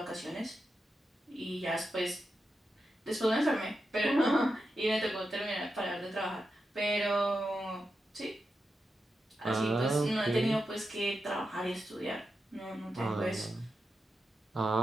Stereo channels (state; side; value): normal; both; correlation 0.88